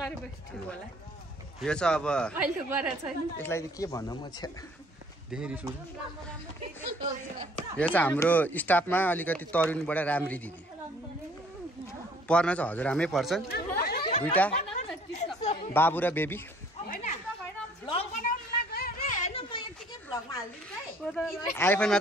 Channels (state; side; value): normal; both; correlation 0.58